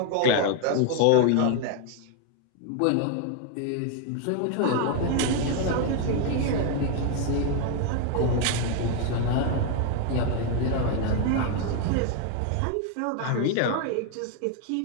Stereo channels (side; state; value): both; different; correlation 0.01